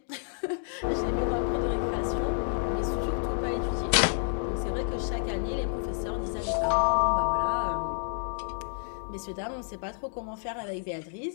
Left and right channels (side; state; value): right; silent; digital silence